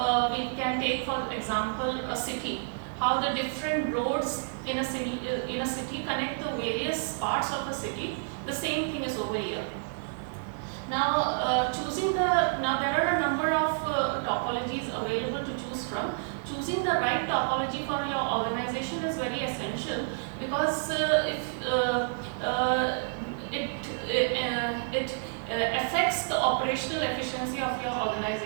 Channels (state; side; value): silent; left; digital silence